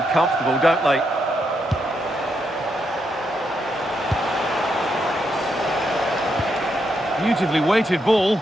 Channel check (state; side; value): normal; both; correlation 0.80